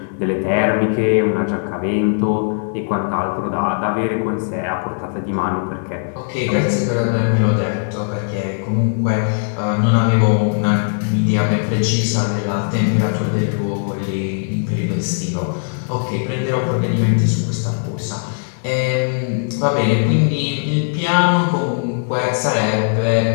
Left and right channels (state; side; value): silent; right; digital silence